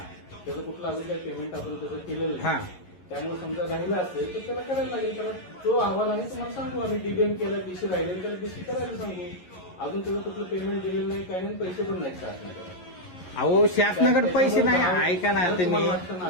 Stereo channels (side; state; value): right; late; 11 ms